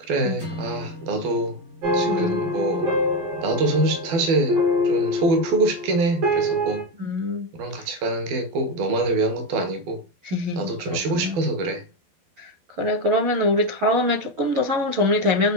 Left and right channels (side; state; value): left; late; 12 ms